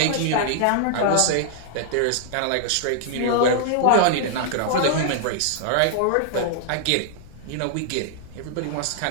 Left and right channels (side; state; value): both; different; correlation -0.01